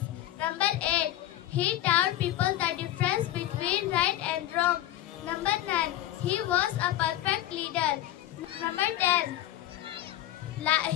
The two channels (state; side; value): quieter; right; 13.7 dB